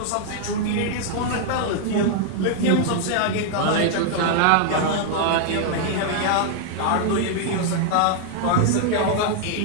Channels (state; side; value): different; both; correlation 0.00